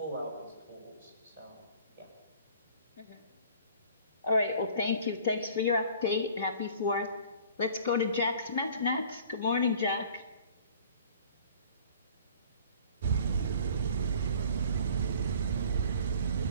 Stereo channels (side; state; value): both; inverted; correlation -0.49